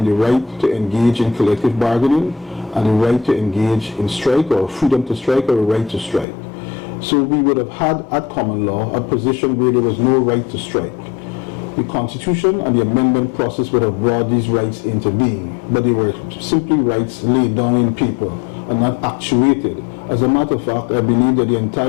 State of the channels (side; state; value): right; drops out; at 6.2 s